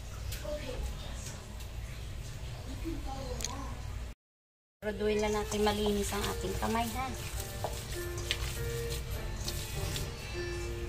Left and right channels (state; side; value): identical; both; correlation 1.00